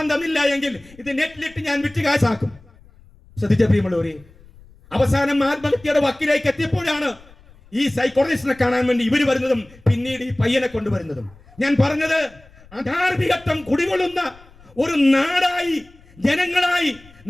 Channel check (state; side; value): noise; left; rumble, 25 dB below the sound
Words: തന്നില്ല എങ്കിൽ ഇത് നെറ്റിലിട്ട് ഞാൻ വിറ്റ് കാശാക്കും. ശ്രദ്ധിച്ച പ്രിയമുള്ളവരെ, അവസാനം ആത്മഹത്യയുടെ വക്കിലേക്ക് എത്തിയപ്പോഴാണ് ഈ സൈക്കോളജിസ്റ്റിനെ കാണാൻ വേണ്ടി ഇവർ വരുന്നതും പിന്നീട് ഈ പയ്യനെ കൊണ്ടുവരുന്നതും. ഞാൻ പറഞ്ഞത്, അധാർമികത്വം കുടികൊള്ളുന്ന ഒരു നാടായി, ജനങ്ങളായി